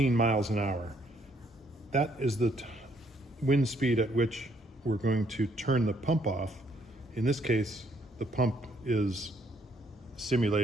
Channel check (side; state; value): both; normal; correlation 0.69